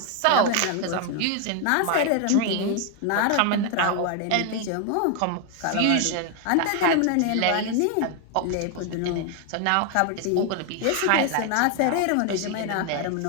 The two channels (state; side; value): different; both; correlation 0.01